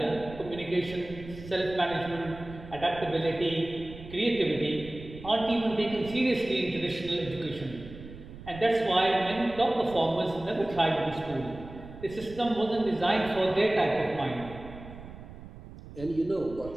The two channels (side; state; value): right; noise; rumble, 15 dB below the sound